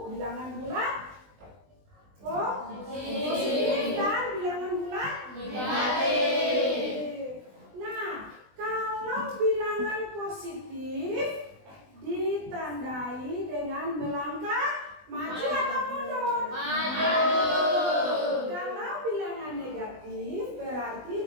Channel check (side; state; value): left; late; 20 ms